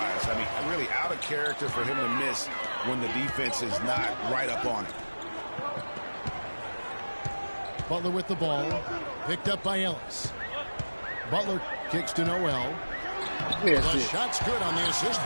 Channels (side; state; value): both; inverted; correlation -1.00